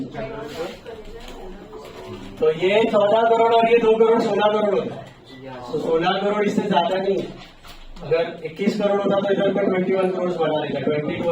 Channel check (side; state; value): both; identical; correlation 1.00